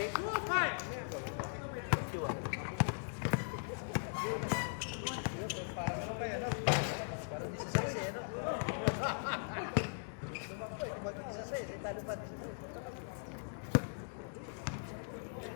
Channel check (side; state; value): right; silent; digital silence